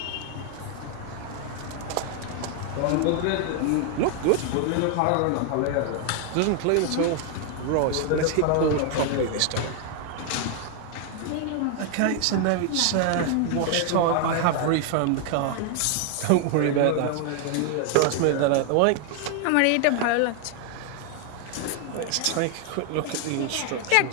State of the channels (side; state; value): both; different; correlation 0.00